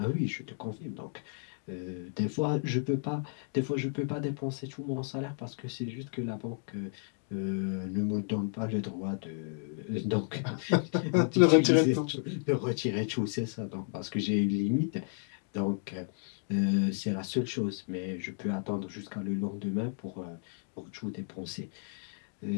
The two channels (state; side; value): silent; right; 56 dB below the other